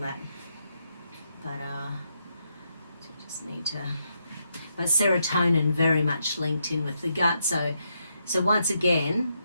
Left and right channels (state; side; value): inverted; both; correlation -0.79